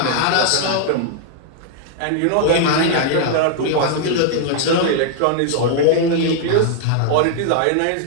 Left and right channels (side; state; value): both; different; correlation -0.01